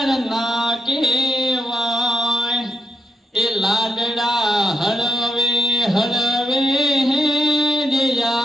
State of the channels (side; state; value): both; normal; correlation 0.83